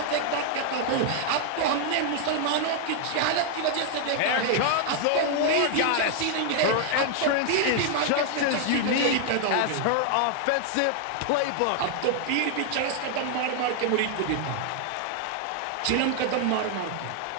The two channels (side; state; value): both; different; correlation 0.00